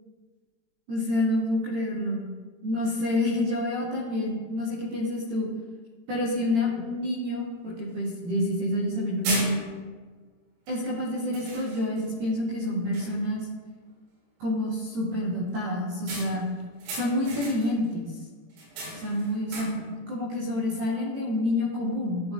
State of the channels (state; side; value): late; left; 18 ms